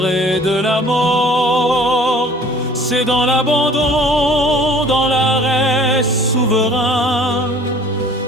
et de la mort. C'est dans l'abandon, dans l'arrêt souverain,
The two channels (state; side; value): normal; both; correlation 0.51